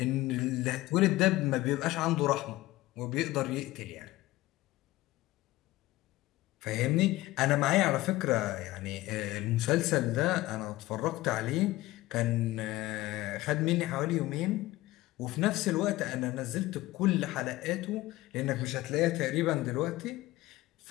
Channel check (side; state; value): right; quieter; 17.9 dB